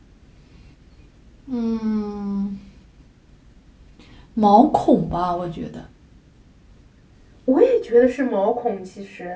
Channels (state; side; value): identical; both; correlation 1.00